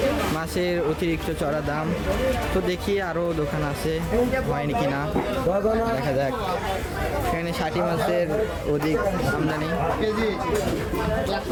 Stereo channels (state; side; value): identical; both; correlation 1.00